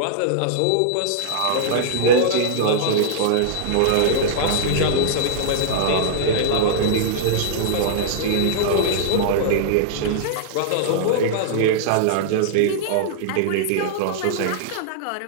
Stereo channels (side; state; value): both; different; correlation -0.02